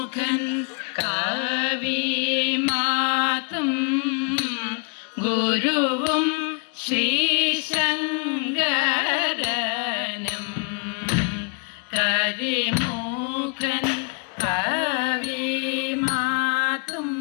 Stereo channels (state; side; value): quieter; right; 36.6 dB